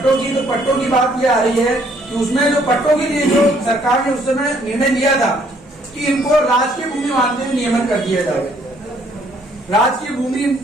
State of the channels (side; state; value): both; normal; correlation 0.65